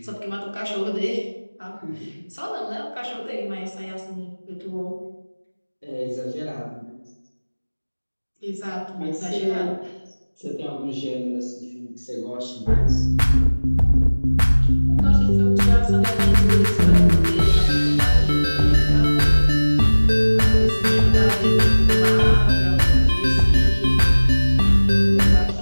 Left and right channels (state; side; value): inverted; both; correlation -1.00